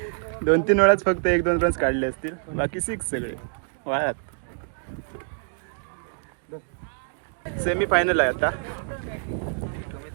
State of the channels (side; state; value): left; silent; digital silence